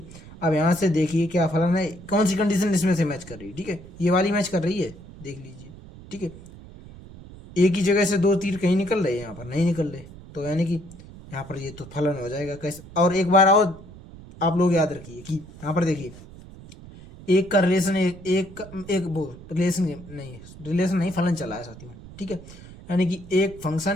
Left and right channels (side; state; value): right; noise; rumble, 17 dB below the sound